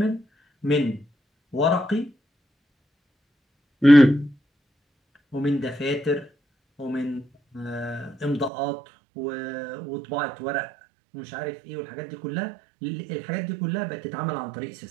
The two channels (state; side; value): drops out; left; at 8.5 s